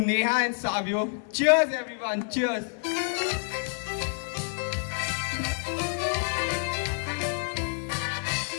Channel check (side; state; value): right; silent; 59 dB below the other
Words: Neha and Savio? Cheers everyone, cheers.